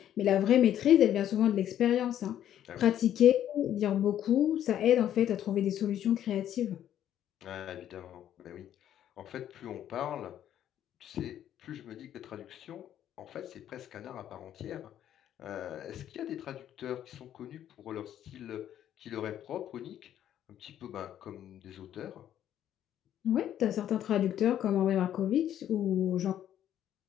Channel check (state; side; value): quieter; right; 10.9 dB